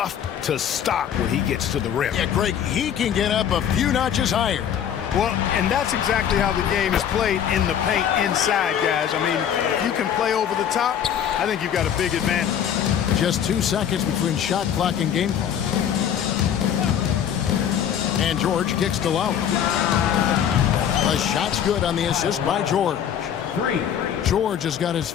to stop when he gets to the rim. Yeah, Greg, he can get up a few notches higher. Well, and that's exactly how the game is played in the paint inside, guys. I mean, if you can play over the top, I think you've got a big advantage. Just 2 seconds between shot clock and game clock. And George kicks to Lowry. The shot's good on the assist by George. 3. George has got his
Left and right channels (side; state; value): right; quieter; 9.1 dB